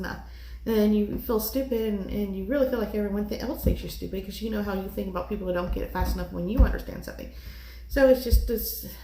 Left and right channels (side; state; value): both; identical; correlation 1.00